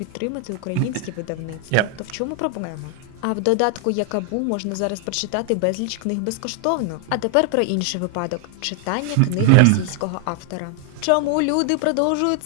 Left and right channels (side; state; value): both; different; correlation 0.00